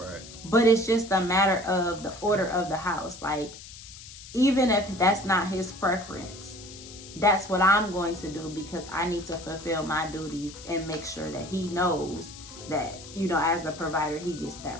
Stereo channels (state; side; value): noise; left; hiss, 16 dB below the sound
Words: But it's just a matter of the order of the house. Like, even if that's not his preference, that's what I'm going to do because I need to fulfill my duties and make sure that he knows that, you know, as a provider, he gets